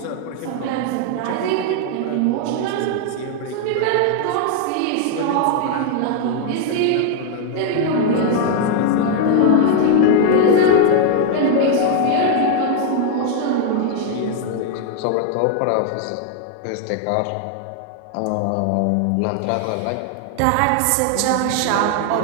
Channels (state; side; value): different; both; correlation 0.00